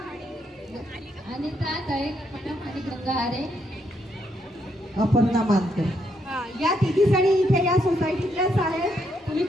अनिता दळेकर मॅडम आणि गंगा आरे. अपर्णा मानकर. या तिघी जणी इथे या सोसायटीतल्याच आहेत. तुम्ही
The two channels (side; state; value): both; normal; correlation 0.76